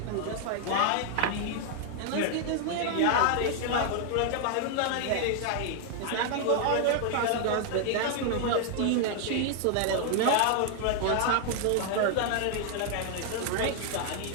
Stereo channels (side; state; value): both; different; correlation 0.00